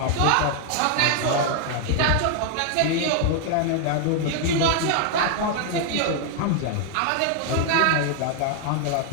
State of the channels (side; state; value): both; different; correlation 0.00